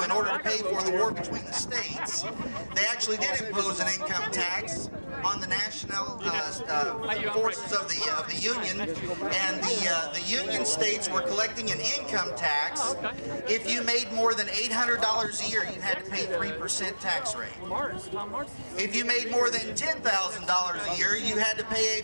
in order to pay for the war between the states, they actually did impose an income tax on the national forces of the Union, and the Union states were collecting an income tax. If you made more than $800 a year, you had to pay 3% tax rate. If you made more than $10,000 a year, you had to pay a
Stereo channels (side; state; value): both; inverted; correlation -1.00